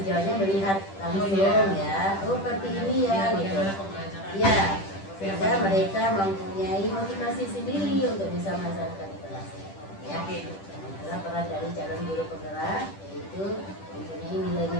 sejauhnya melihat langsung ya, oh seperti ini ya gitu. Ya, sehingga mereka mempunyai motivasi sendiri untuk bisa melaksanakan di kelasnya. Ya, itulah peran dari calon guru penggerak, yaitu mempunyai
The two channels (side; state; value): right; late; 10 ms